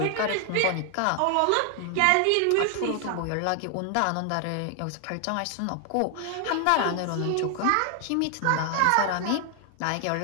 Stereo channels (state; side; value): different; both; correlation 0.00